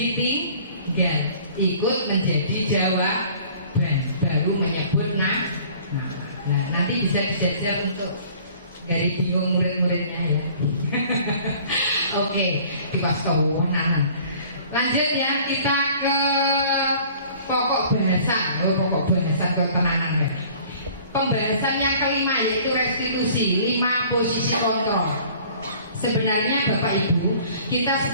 Ikut menjadi jawaban, baru menyebut nah, nanti bisa dijajal untuk dari bingung murid-muridnya ya. Oke, dipasau-nanan. Lanjut ya, kita ke pokok bahasa. Pokok bahasa ke tenanan ya. Pembahasan yang kelima yaitu restitusi, 5 posisi kontrol. Sebenarnya Bapak Ibu, kita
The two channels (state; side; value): inverted; both; correlation -0.50